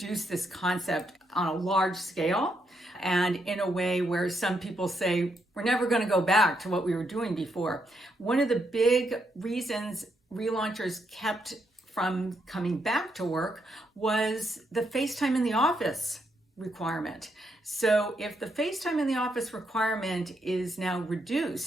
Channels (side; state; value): both; normal; correlation 0.78